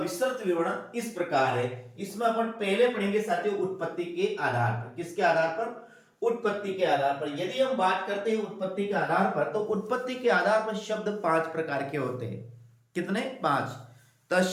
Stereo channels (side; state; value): both; identical; correlation 1.00